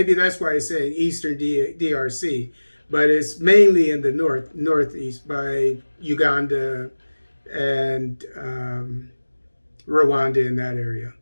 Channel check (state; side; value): inverted; both; correlation -1.00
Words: that's why it's saying Eastern DRC, but it's mainly in the northeast by Uganda and Rwanda, in that area.